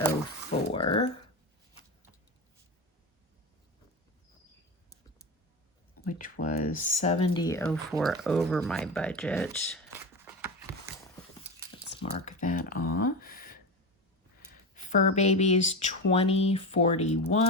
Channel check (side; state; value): both; normal; correlation 0.21